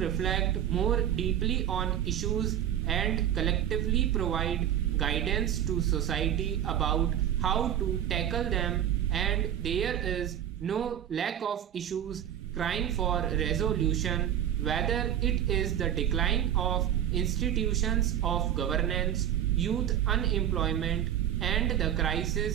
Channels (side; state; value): left; quieter; 10.4 dB